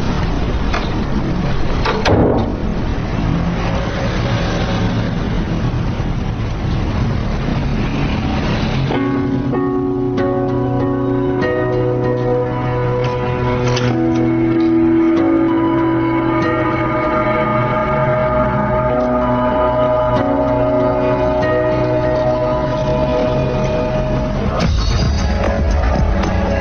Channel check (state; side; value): identical; both; correlation 1.00